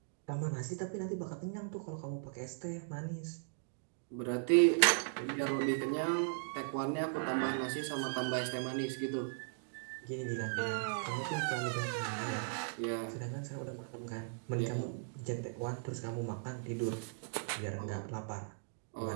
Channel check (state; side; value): silent; left; digital silence